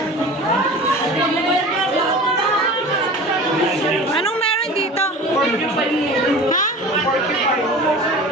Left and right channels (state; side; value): normal; both; correlation 0.37